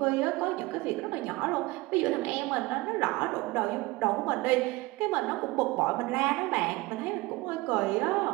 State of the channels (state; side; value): quieter; left; 21.3 dB